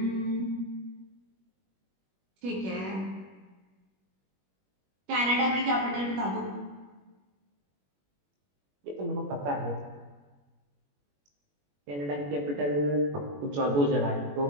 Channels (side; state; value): left; late; 21 ms